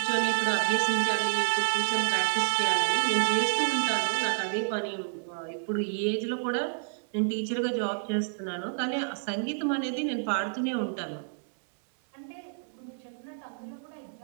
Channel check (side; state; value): left; silent; digital silence